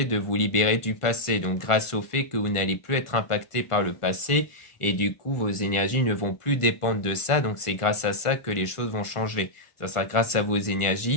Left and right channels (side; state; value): right; late; 1.4 ms